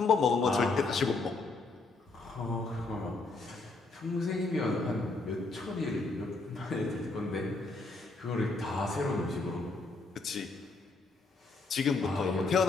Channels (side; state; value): right; quieter; 3.6 dB